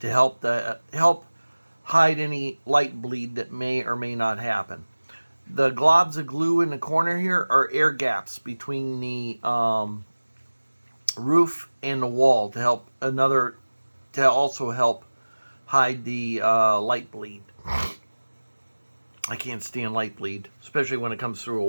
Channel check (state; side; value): inverted; both; correlation -1.00